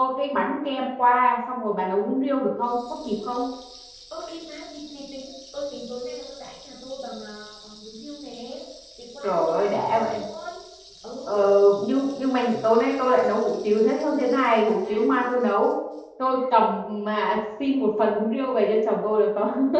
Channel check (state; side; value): identical; both; correlation 1.00